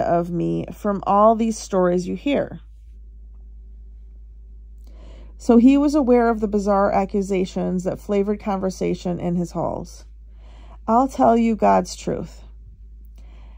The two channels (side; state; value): both; identical; correlation 1.00